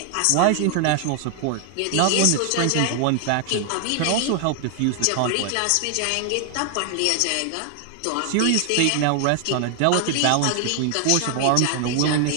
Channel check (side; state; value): both; different; correlation 0.00